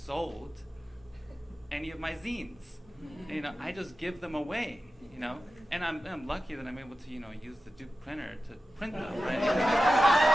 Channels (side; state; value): both; normal; correlation 0.93